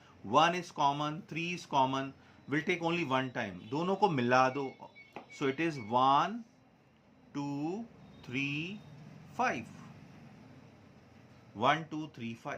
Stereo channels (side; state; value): both; identical; correlation 1.00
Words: 1 is common, 3 is common. Will take only one time. दोनों को मिला दो. So it is 1, 2, 3, 5. 1, 2, 3,